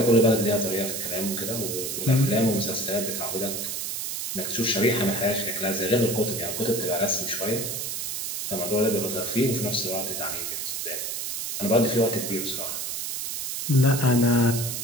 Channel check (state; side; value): noise; right; hiss, 4 dB below the sound